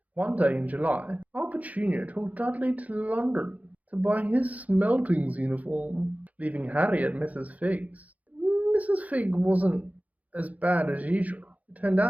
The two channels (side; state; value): left; late; 0.073 ms